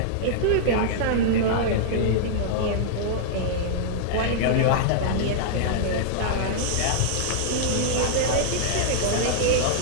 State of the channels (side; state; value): both; different; correlation -0.02